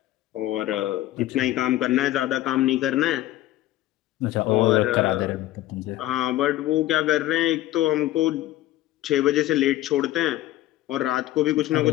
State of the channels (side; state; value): right; quieter; 15.1 dB